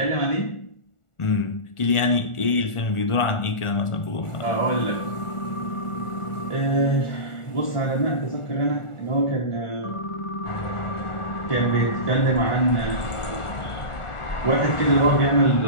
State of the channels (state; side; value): late; right; 1.4 ms